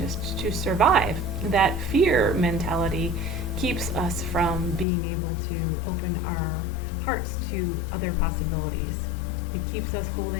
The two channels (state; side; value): drops out; right; at 4.9 s